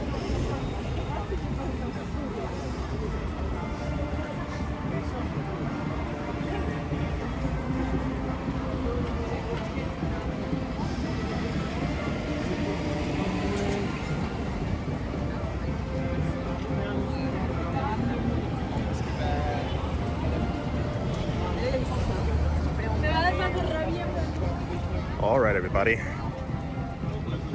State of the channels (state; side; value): identical; both; correlation 1.00